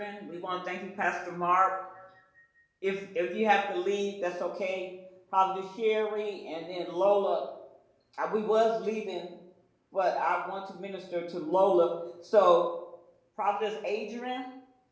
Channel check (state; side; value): identical; both; correlation 1.00